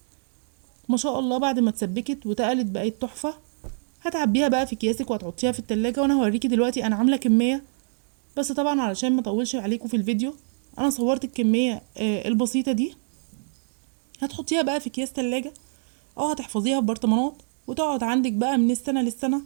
ما شاء الله بعد ما اتسبكت وتقلت بقت تحفه. هتعبيها بقى في اكياسك وهتحطيها في التلاجة. وانا هوريكي دلوقتي انا عامله كميه، بس طبعا علشان ما اطولش عليكم في الفيديو انا صورت الكميه البسيطه دي. هتحطيها بقى في اكياس تلاجة او هتحفظيها في برطمانات وتقعد عندك بقى من السنه للسنه.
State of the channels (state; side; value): silent; left; digital silence